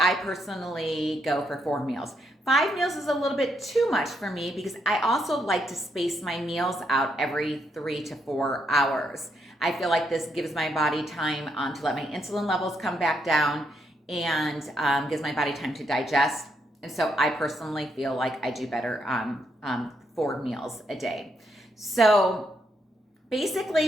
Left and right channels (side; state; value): both; normal; correlation 0.77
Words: personally go for 4 meals. 5 meals is a little bit too much for me because I also like to space my meals out every 3 to 4 hours. I feel like this gives my body time to let my insulin levels come back down and gives my body time to digest. And so I personally feel like I do better on 4 meals a day. So